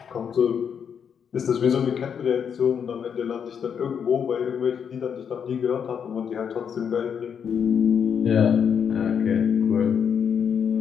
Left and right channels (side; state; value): right; quieter; 7.5 dB